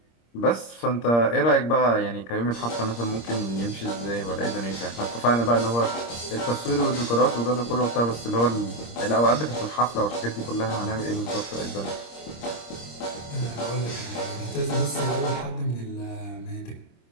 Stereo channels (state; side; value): late; right; 26 ms